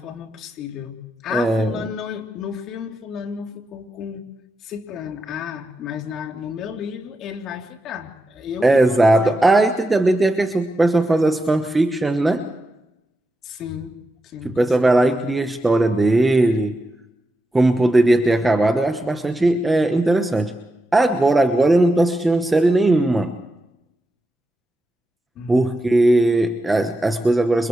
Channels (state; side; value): normal; both; correlation 0.88